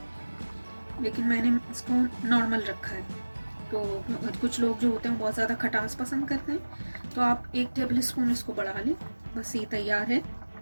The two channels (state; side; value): inverted; both; correlation -1.00